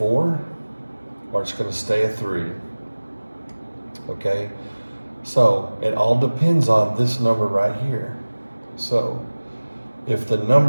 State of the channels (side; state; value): both; inverted; correlation -1.00